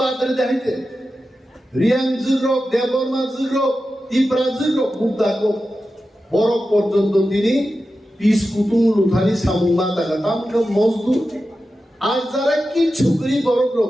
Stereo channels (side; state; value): both; normal; correlation 0.92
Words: দেখাইতে রিয়াং জুরক দেববর্মা জুরক ত্রিপুরা জুরক বুদ্ধাক বরফ পর্যন্ত তিনি পিস কুতুং লুথানি সামুমা তাকা তামকে মজদুর আর যারা কি ছুকরি বরফ